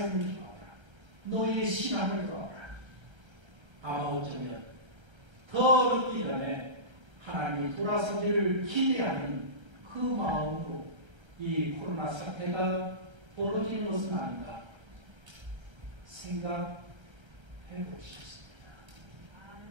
돌아오라. 너희의 신앙을 돌아오라. 아마 어쩌면 더 늦기 전에 하나님이 돌아서기를 기대하는 그 마음으로 이 코로나 사태가 벌어지는 것은 아닌가 생각해 보셨습니다.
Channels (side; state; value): left; late; 1.3 ms